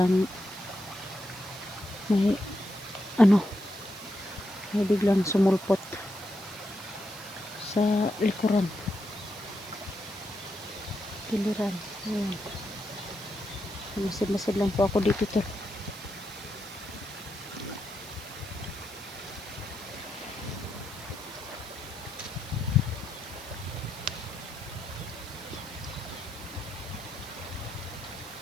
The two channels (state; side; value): noise; right; hiss, 15 dB below the sound